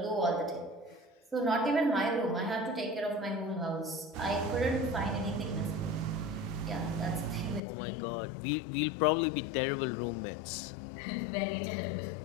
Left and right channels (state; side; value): drops out; right; at 7.6 s